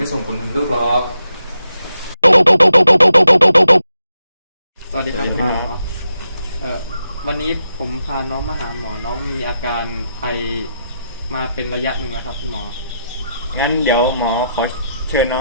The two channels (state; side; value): inverted; both; correlation -0.84